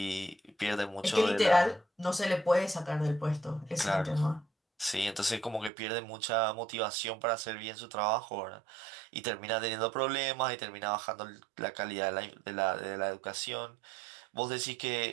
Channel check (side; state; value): left; drops out; at 5.7 s